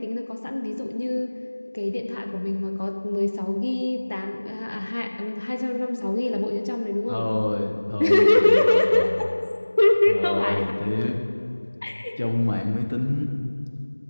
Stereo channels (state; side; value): inverted; both; correlation -1.00